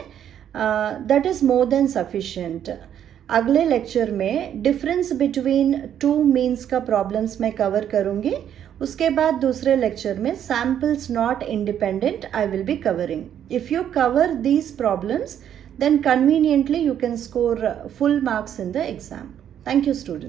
that is more than sufficient. अगले लेक्चर में डिफरेंस बिटवीन 2 मीन्स का प्रॉब्लम्स मैं कवर करूंगी. उसके बाद दूसरे लेक्चर में samples not independent I will be covering. If you cover these problems, then conveniently you can score full marks in the exam. Thank you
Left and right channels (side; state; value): left; quieter; 9.8 dB